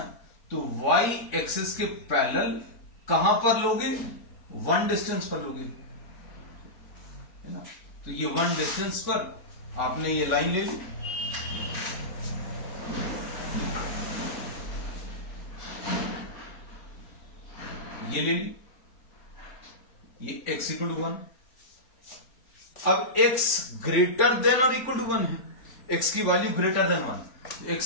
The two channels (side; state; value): right; late; 3.5 ms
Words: तो y एक्सिस के पैरेलल कहां पर लोगे, 1 डिस्टेंस पर लोगे, है ना। तो ये 1 डिस्टेंस पर आपने ये लाइन ले ली, ये ले ली, ये x इक्वल टू 1। अब x ग्रेटर देन और इक्वल टू 1 है, x की वैल्यू ग्रेटर देन 1,